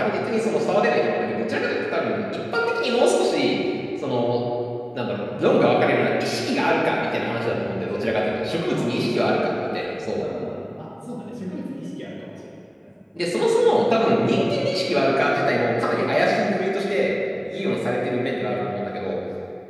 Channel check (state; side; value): identical; both; correlation 1.00